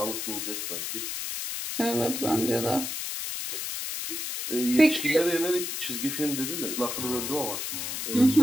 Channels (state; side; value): noise; left; hiss, 4 dB below the sound